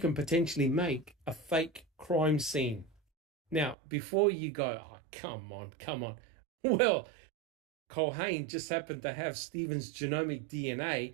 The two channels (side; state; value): left; drops out; at 3.8 s